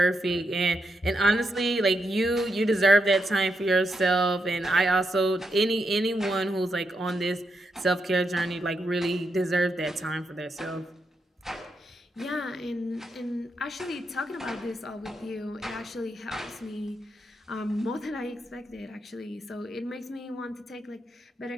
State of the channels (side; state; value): both; normal; correlation 0.83